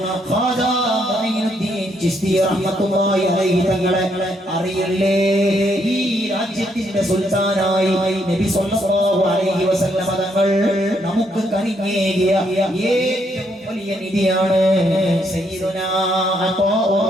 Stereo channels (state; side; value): normal; both; correlation 0.74